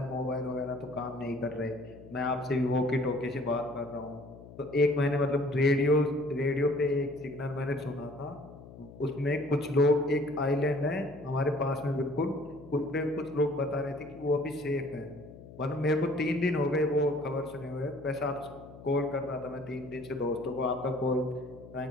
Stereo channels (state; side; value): noise; left; hum, 17 dB below the sound